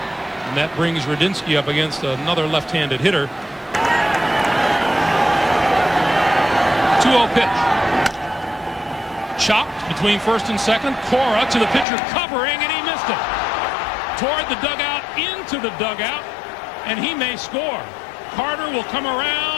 And that brings Radinsky up against another left-handed hitter. 2-0 pitch. Chopped between first and second. Cora to the pitcher covering, and he missed it. Toward the dugout, into the dugout, and he may score. Carter will come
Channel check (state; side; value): drops out; right; at 11.9 s